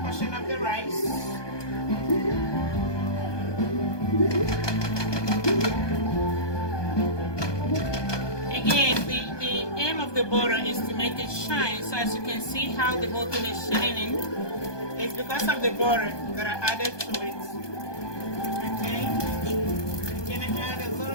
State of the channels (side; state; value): right; late; 1.2 ms